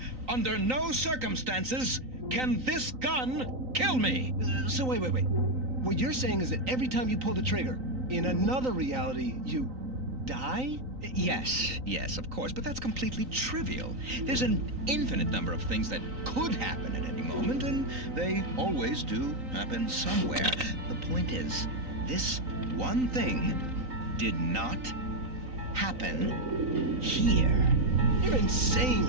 Under no circumstances can this gun kill me. So wait. What you're saying is that every time you pull the trigger, in another reality, you die? Yes, of course, but that's completely trivial. There's an infinite number of things that could happen at any moment, and they always do happen somewhere. The point is, this one thing did not happen here. You're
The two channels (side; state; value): left; late; 3.9 ms